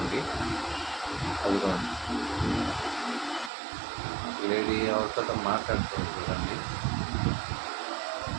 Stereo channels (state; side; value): drops out; left; at 3.5 s